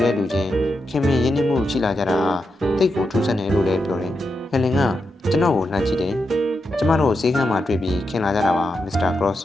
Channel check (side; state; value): both; normal; correlation 0.86